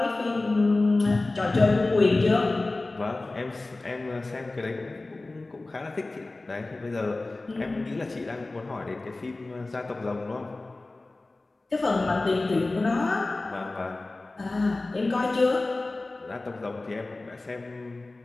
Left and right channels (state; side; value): quieter; right; 3.1 dB